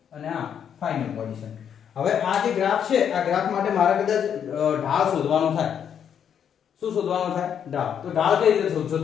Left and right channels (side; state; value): right; quieter; 8.4 dB